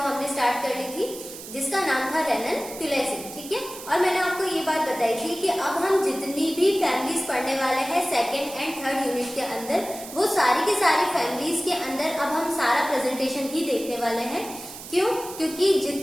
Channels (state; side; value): noise; right; hiss, 13 dB below the sound